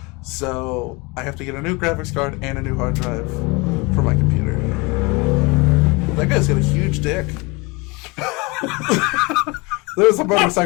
So I have to get a new graphics card and a new hard drive for my computer. That guy's got a huge dick. There was a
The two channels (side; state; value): right; quieter; 26.7 dB